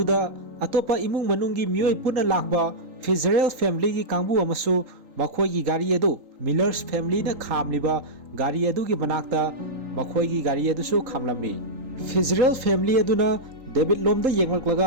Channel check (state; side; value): late; left; 3.8 ms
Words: ꯑꯇꯣꯞꯄ ꯏꯃꯨꯡ ꯃꯅꯨꯡꯒꯤ ꯃꯤꯑꯣꯏ ꯄꯨꯟꯅ ꯂꯥꯛꯄ ꯐꯤꯖꯔꯦꯜ ꯐꯦꯃꯤꯂꯤꯒꯤ ꯀꯥꯡꯕꯨ ꯑꯃꯁꯨ ꯃꯈꯣꯏꯒꯤ ꯒꯥꯔꯤ ꯑꯗꯨ ꯃꯤꯂꯔꯁ ꯐꯦꯃꯤꯂꯤꯅ ꯈꯥꯝꯂꯤꯕ ꯒꯥꯔꯤ ꯑꯗꯨꯒꯤ ꯃꯅꯥꯛꯇ ꯃꯈꯣꯏꯒꯤ ꯒꯥꯔꯤ ꯑꯗꯨꯁꯨ ꯈꯥꯝꯂꯝꯃꯤ꯫ ꯐꯤꯖꯔꯦꯜ ꯐꯦꯃꯤꯂꯤ ꯑꯗꯨꯅ ꯗꯦꯕꯤꯗ ꯂꯣꯝꯗ